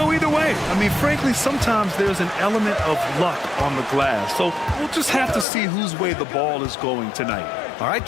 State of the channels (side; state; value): right; drops out; at 5.5 s